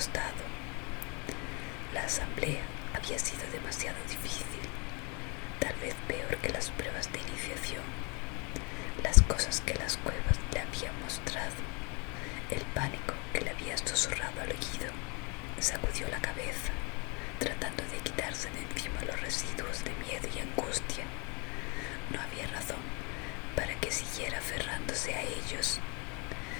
La asamblea había sido demasiado difícil, tal vez peor que las pruebas de iniciación. Las cosas que las cuevas le habían mostrado, el pánico que le había susurrado al oído. Sacudió la cabeza, tratando de quitarse de encima los residuos de miedo y angustia. No había razón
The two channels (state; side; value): quieter; right; 31.8 dB